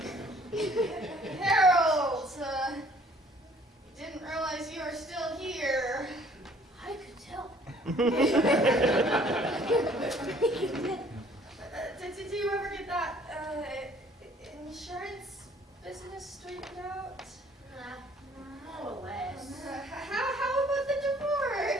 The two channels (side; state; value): both; normal; correlation 0.58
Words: Harold, didn't realize you were still here. I could tell. Did you ever get that insurance business straightened out? More or less. How about the